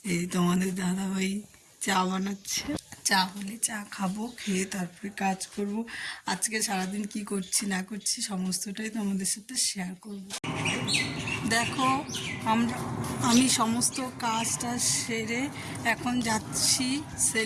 এই তোমাদের দাদাভাই চা বানাচ্ছে, চা হলে চা খাবো, খেয়ে তারপরে কাজ করব। আজকে সারাদিন কি করছি না করছি সমস্তটাই তোমাদের সাথে শেয়ার করব। দেখো আমি সমস্ত কাজটা সেরে এখন যাচ্ছি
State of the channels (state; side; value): identical; both; correlation 1.00